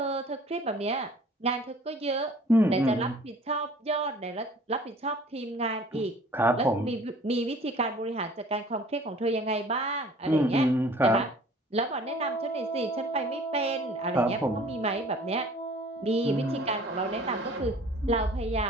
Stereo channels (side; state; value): both; normal; correlation 0.50